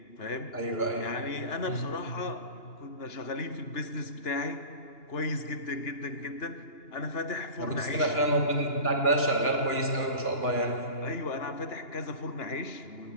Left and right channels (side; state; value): right; late; 2.9 ms